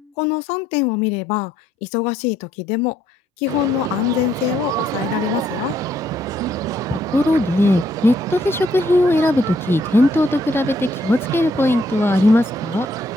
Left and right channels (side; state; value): both; normal; correlation 0.71